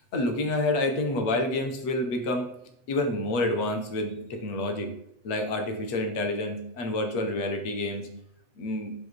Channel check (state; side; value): late; right; 7.9 ms